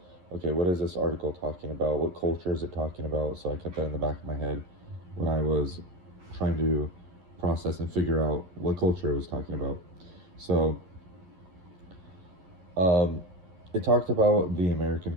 okay, what is this article talking about? What culture is it talking about? So I kept that in the back of my head when I was trying to process and figure out what culture it was talking about. So um, it talked about the American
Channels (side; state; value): left; late; 11 ms